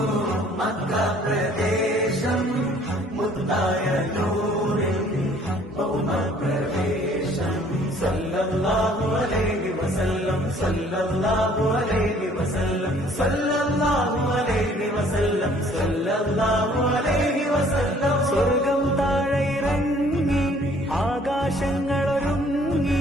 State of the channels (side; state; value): both; normal; correlation 0.57